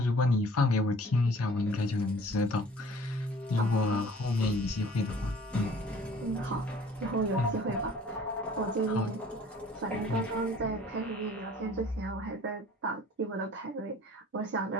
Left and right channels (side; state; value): both; normal; correlation 0.51